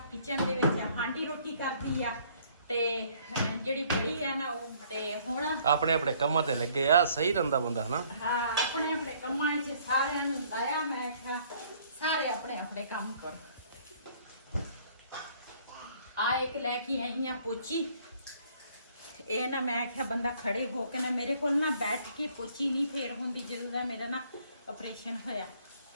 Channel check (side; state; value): both; inverted; correlation -0.61